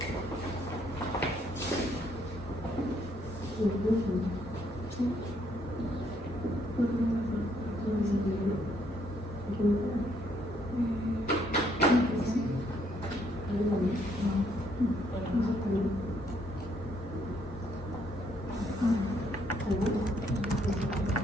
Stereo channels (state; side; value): normal; both; correlation 0.70